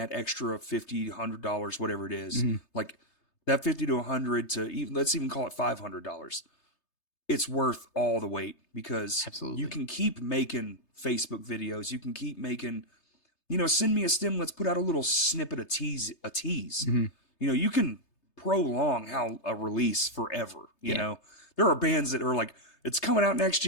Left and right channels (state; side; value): late; right; 3.3 ms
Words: extra $50, $100, whatever it is, like that 50 to 100 to even, let's even call it $500. It's worth all the wait because you can keep making Facebook videos. You can keep making, send me a stem. Let's put out a little snippet of tease. You can prolong how a release forever. You know, there are bands that are like, it's coming out next